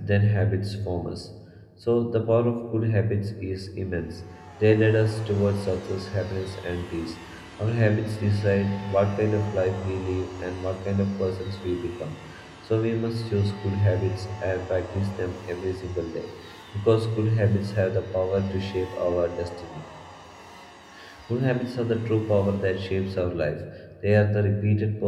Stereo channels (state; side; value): identical; both; correlation 1.00